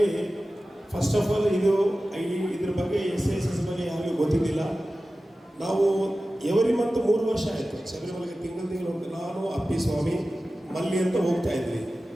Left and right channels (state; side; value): normal; both; correlation 0.95